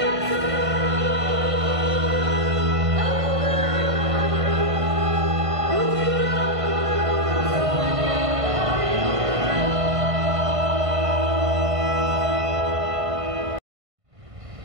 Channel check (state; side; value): late; left; 1.5 ms